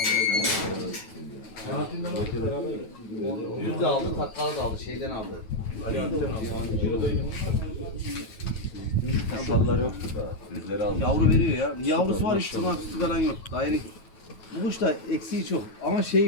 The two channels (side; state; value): right; late; 9.2 ms